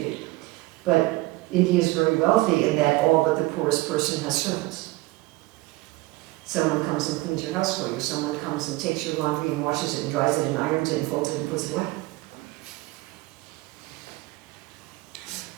But India is very wealthy in that all but the poorest person has servants. Someone comes and cleans your house for you. Someone comes and takes your laundry and washes it and dries it and irons it and folds it and puts it away.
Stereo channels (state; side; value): quieter; left; 20.6 dB